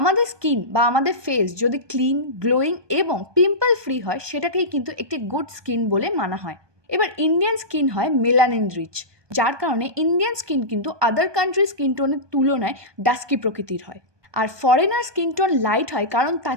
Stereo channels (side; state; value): left; late; 1.2 ms